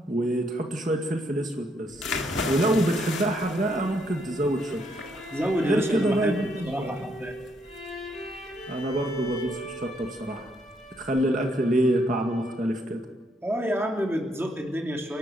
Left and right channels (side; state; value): both; normal; correlation 0.73